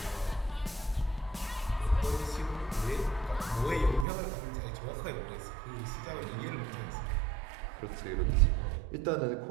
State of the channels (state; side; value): drops out; left; at 4.0 s